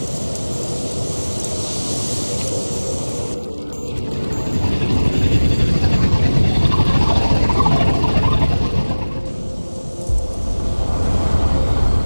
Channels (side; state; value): both; inverted; correlation -1.00